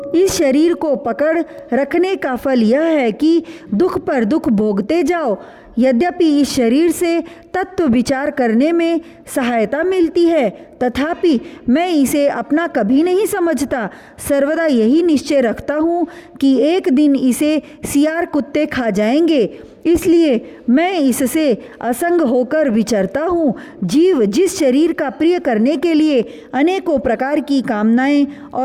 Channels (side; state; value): both; identical; correlation 1.00